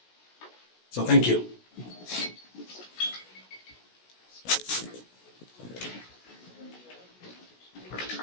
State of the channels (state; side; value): late; right; 16 ms